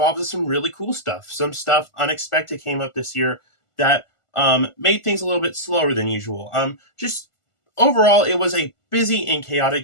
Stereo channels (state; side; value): late; right; 1.5 ms